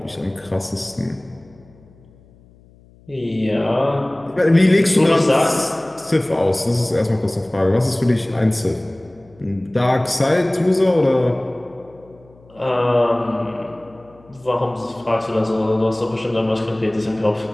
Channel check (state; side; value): noise; left; hum, 27 dB below the sound